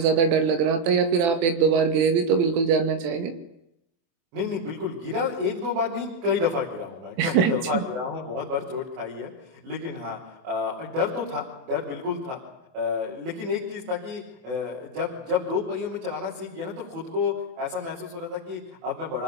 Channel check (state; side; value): late; left; 24 ms